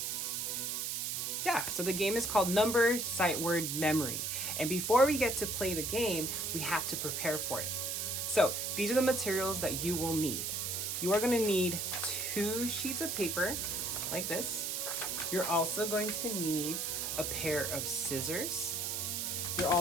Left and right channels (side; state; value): right; noise; hiss, 1 dB below the sound